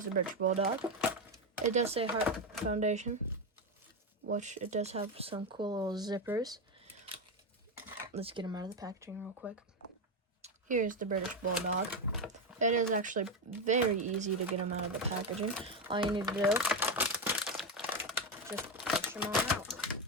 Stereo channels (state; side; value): normal; both; correlation 0.11